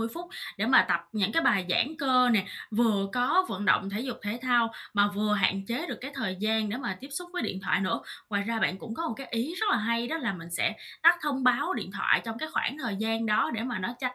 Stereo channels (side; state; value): both; identical; correlation 1.00